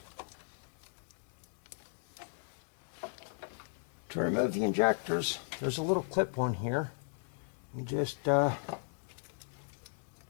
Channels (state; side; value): silent; right; digital silence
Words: To remove the injectors, there's a little clip on here. You just